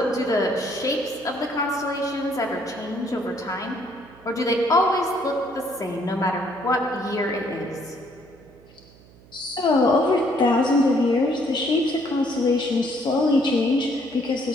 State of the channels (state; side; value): noise; right; hum, 25 dB below the sound